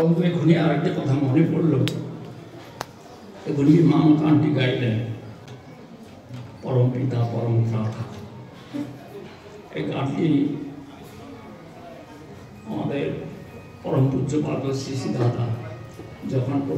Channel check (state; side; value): identical; both; correlation 1.00